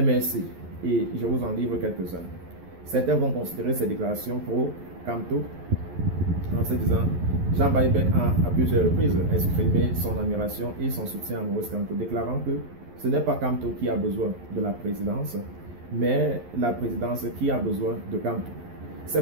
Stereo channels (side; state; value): left; late; 11 ms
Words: Et je vous en livre quelques-uns. Certains vont considérer ces déclarations pro Kamto en se disant Jean Bayebek a plusieurs reprises exprimé son admiration et son soutien à Maurice Kamto, déclarant que ce n'est pas Kamto qui a besoin de la présidence, mais la présidence qui a besoin de Kamto. Ces